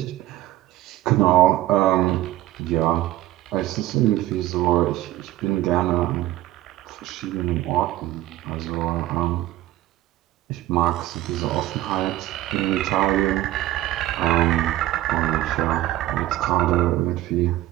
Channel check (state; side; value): quieter; left; 15.4 dB